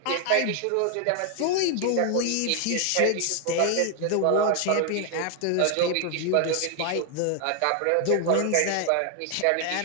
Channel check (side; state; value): both; different; correlation 0.00